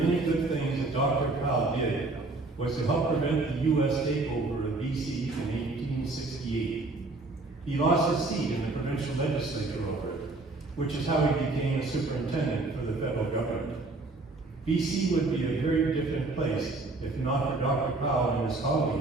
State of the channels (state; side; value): quieter; left; 3.2 dB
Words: good things that Dr. Powell did was to help prevent the U.S. takeover of BC in 1868. He lost his seat in the provincial legislature over it, which is how he became a superintendent for the federal government. BC would be a very different place if not for Dr. Powell and his